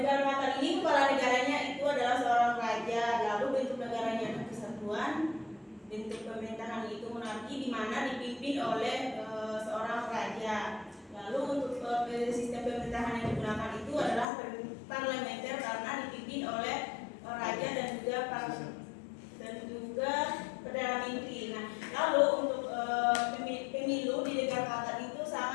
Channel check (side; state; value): right; drops out; at 14.2 s